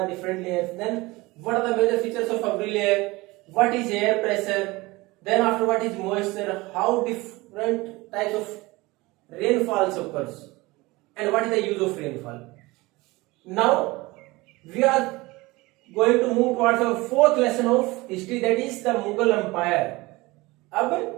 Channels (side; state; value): left; quieter; 21.9 dB